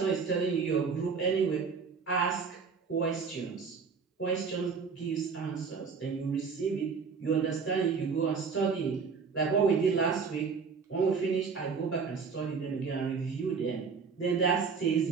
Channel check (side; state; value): left; quieter; 5.4 dB